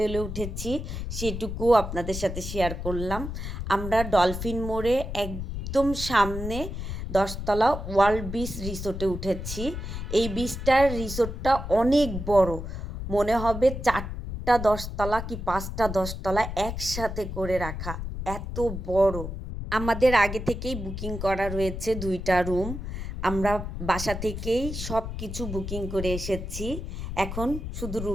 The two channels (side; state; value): left; noise; rumble, 6 dB below the sound